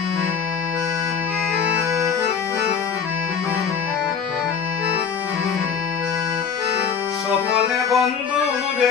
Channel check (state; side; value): quieter; right; 6.8 dB